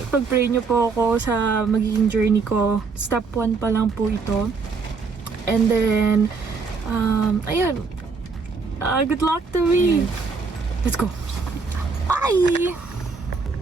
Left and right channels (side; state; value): left; quieter; 4.7 dB